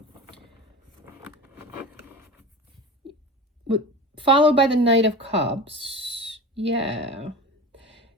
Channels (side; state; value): both; normal; correlation 0.30